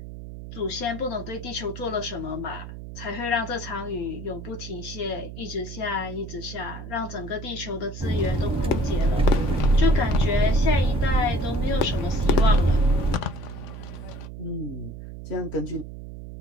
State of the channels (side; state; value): right; noise; hum, 11 dB below the sound